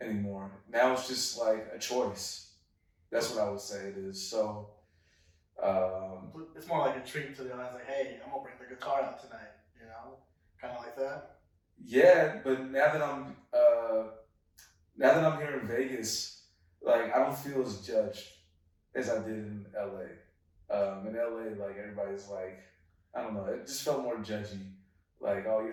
anymore. Now it's just like a choice. That's what I would say it is. So. It's more like a treat to the audience, like, hey, I'm gonna bring the guitar out tonight, kind of like that. Yeah, but now that I'm here in Vegas, like I don't feel as judged as I did in LA. In LA, like everybody's like, I don't know, it just felt more judgy. Like, oh,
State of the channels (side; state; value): both; identical; correlation 1.00